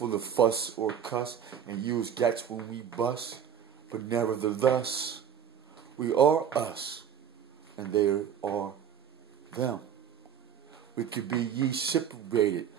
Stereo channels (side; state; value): left; quieter; 8.5 dB